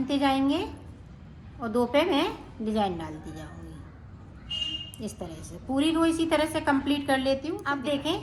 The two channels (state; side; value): identical; both; correlation 1.00